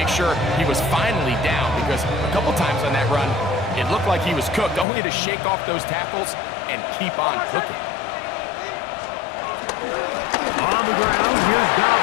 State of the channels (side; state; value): right; drops out; at 4.9 s